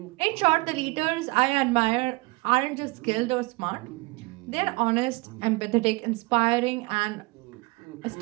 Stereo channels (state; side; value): quieter; left; 24.8 dB